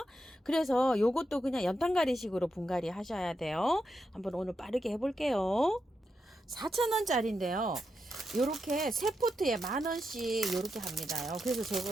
그래서 요것도 그냥 연탄가리식으로 분갈이 하셔야 돼요. 한번 오늘 빠르게 해볼게요. 4,000원짜리인데요. 요렇게 세 포트에 10,000원씩 요렇게 합니다요.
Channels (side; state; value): both; normal; correlation 0.85